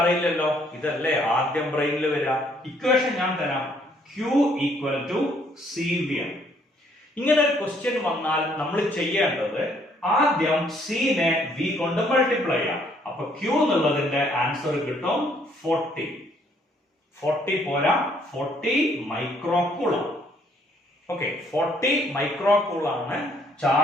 ഇതല്ലേ ആദ്യം ബ്രെയിനിൽ വരിക. ഇക്വേഷൻ ഞാൻ തരാം. Q ഈക്വൽ ടു CV ആണ്. ഇങ്ങനെ ഒരു ക്വസ്റ്റ്യൻ വന്നാൽ നമ്മൾ ചെയ്യേണ്ടത് ആദ്യം C നെ V കൊണ്ട് മൾട്ടിപ്ലൈ ചെയ്യാം. അപ്പൊ Q എന്നുള്ളതിന്റെ ആൻസർ കിട്ടും 40. 40 പോരാ, 40 മൈക്രോകൂളം. ഓക്കെ, 40 മൈക്രോകൂളാണ്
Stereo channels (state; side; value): normal; both; correlation 0.66